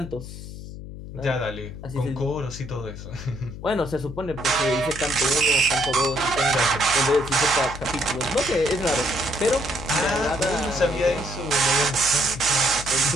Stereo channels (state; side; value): noise; left; hum, 11 dB below the sound